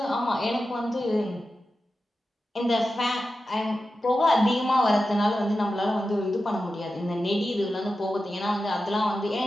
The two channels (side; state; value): both; normal; correlation 0.92